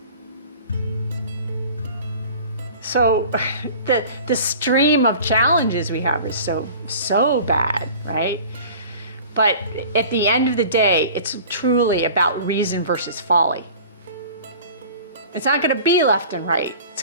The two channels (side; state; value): both; inverted; correlation -0.42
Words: So the stream of challenges we have is so bad, right? But at the end of the day, it's truly about reason versus folly. It's not going to be left and right. It's